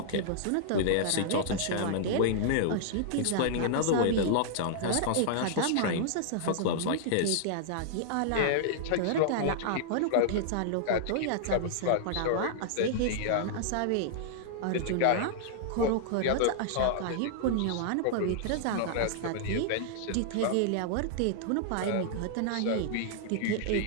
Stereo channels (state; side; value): different; both; correlation -0.01